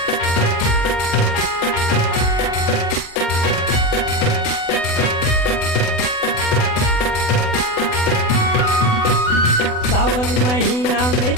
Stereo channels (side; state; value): right; late; 32 ms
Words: सावन महीना में